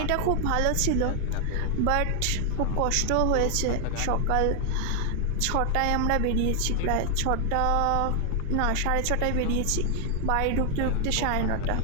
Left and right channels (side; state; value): both; different; correlation 0.00